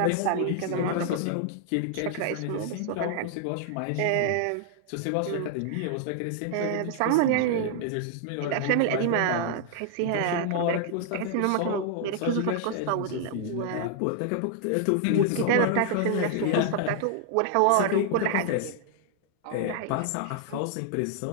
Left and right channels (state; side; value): different; both; correlation 0.00